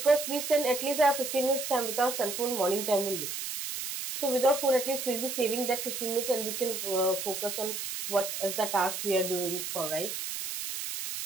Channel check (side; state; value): right; noise; hiss, 5 dB below the sound